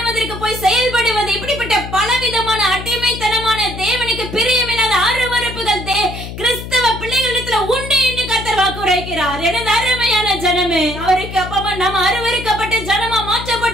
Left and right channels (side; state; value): left; noise; hum, 9 dB below the sound